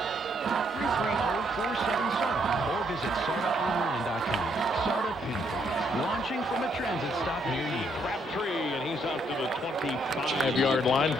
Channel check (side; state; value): both; normal; correlation 0.72